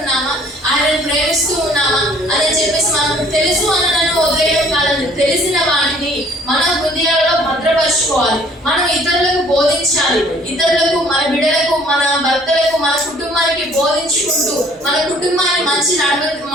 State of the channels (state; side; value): normal; both; correlation 0.57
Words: ఆయనను ప్రేమిస్తూ ఉన్నామా అని చెప్పేసి మనం తెలుసు అనను వదిలేయడం కాదండి. తెలిసిన వాటిని మన హృదయాల్లో భద్రపరచుకోవాలి. మనం ఇతరులకు బోధించాలి. ఇతరులకు, మన బిడ్డలకు, మన భర్తలకు, మన కుటుంబానికి బోధించుకుంటూ మన కుటుంబాన్ని మంచి